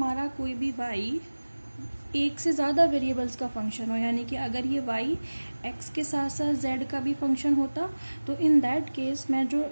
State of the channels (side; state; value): both; inverted; correlation -1.00